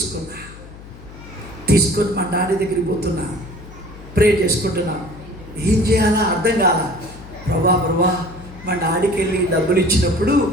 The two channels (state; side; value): noise; left; hum, 17 dB below the sound